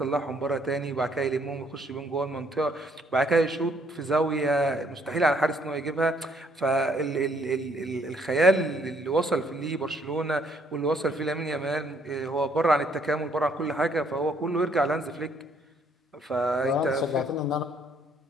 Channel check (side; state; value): both; normal; correlation 0.67